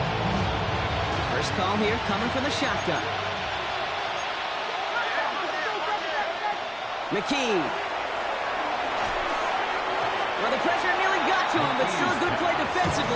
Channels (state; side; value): identical; both; correlation 1.00